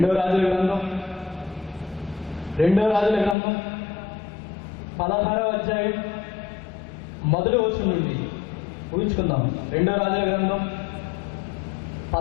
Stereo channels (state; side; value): drops out; right; at 3.4 s